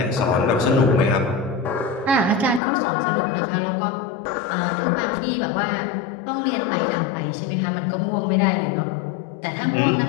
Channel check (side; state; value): right; drops out; at 2.6 s